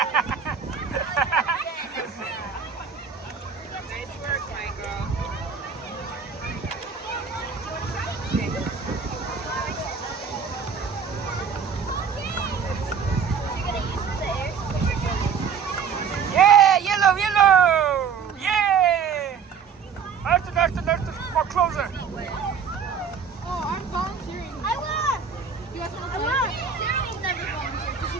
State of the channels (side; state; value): left; quieter; 6.4 dB